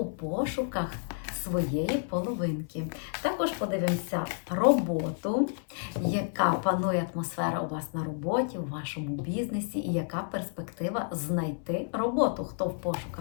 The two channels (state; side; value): silent; right; 58 dB below the other